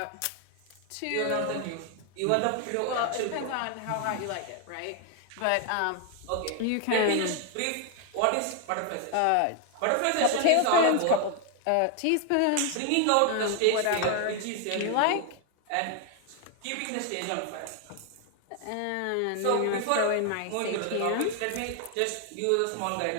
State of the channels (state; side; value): different; both; correlation 0.00